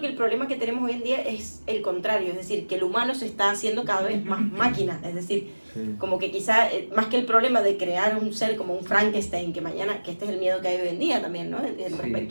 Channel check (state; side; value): inverted; both; correlation -1.00